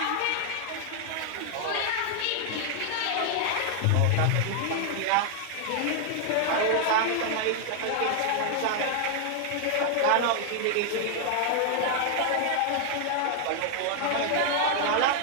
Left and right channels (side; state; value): both; different; correlation 0.00